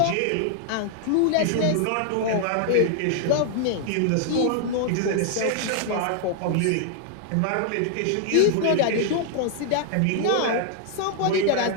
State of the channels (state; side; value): different; both; correlation -0.01